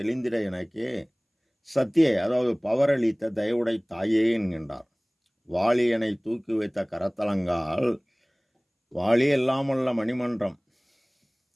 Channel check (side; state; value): both; identical; correlation 1.00